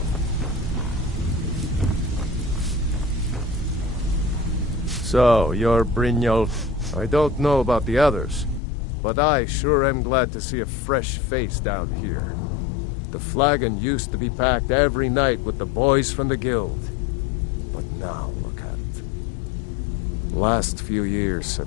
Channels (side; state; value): right; drops out; at 8.6 s